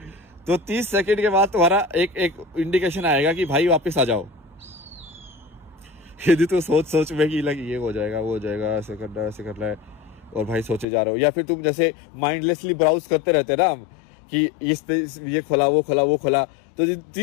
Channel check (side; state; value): right; drops out; at 10.9 s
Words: तो 30 सेकंड के बाद तुम्हारा एक इंडिकेशन आएगा कि भाई वापस आ जाओ। यदि तो सोच में कि लग ये हो जाएगा, वो हो जाएगा, ऐसे करना है, ऐसे करना है, और भाई सोचे जा रहे हो। या फिर तुम जैसे माइंडलेसली ब्राउज करते रहते ना हम, कि इस पे ये खोला, वो खोला, वो खोला, तो